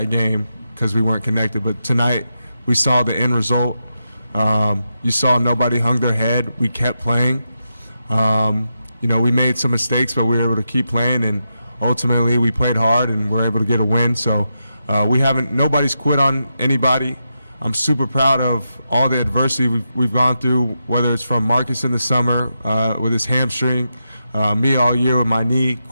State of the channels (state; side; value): inverted; both; correlation -0.87